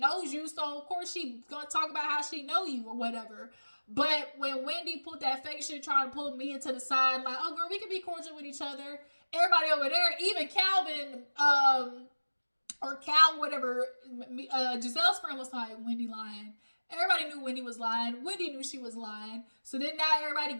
you, so of course she gonna talk about how she know you or whatever. But when Wendy put that fake shit trying to pull me into the side, like, oh girl, we can be cordial with each other. Everybody over there, even Calvin, or Cal, whatever, Giselle's friend was like, Wendy lying. Everybody knew Wendy was lying. Wendy knew she was lying. So then now everybody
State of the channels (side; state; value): both; inverted; correlation -1.00